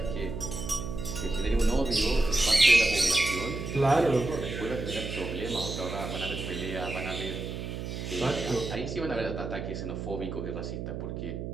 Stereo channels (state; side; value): noise; right; hum, 6 dB below the sound